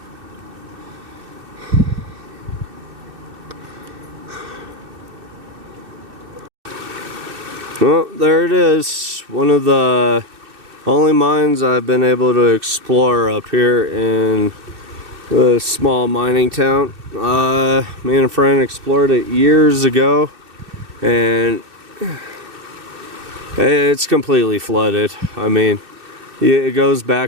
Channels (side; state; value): left; late; 2.6 ms